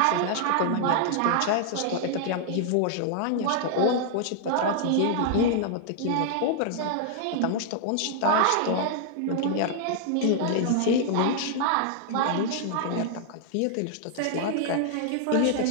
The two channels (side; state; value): both; different; correlation -0.01